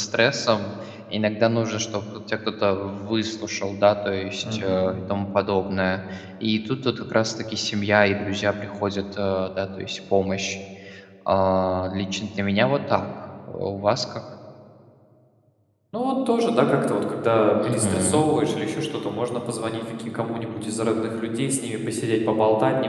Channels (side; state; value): both; identical; correlation 1.00